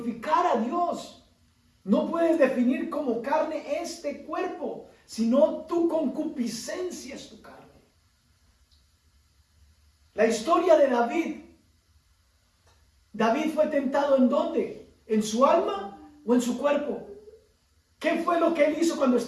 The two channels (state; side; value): identical; both; correlation 1.00